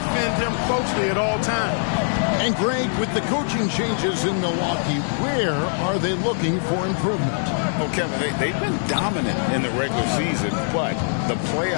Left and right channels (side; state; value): right; silent; digital silence